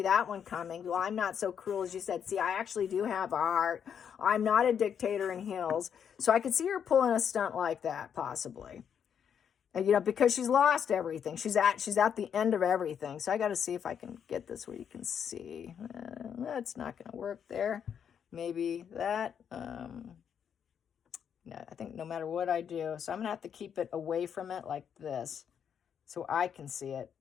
that one coming. Well, I'm not so cruel as you said. See, I actually do have a heart. I'm not a dictator in heels. So I could see her pulling a stunt like that, possibly. And, because she's lost everything. She's at the end of everything. So I got to see if I can get this where you can see. That's not going to work there. Maybe that. No, I think no matter what I do. So I'm going to have to keep it away from it like this so I can see it.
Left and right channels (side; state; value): right; quieter; 8.0 dB